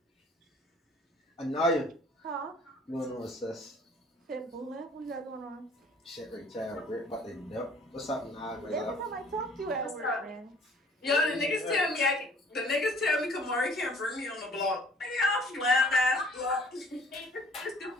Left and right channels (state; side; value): normal; both; correlation 0.54